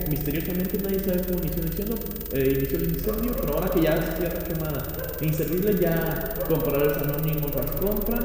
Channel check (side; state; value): both; identical; correlation 1.00